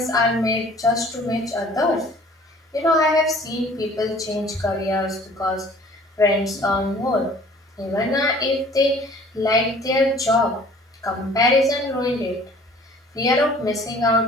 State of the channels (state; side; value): normal; both; correlation 0.51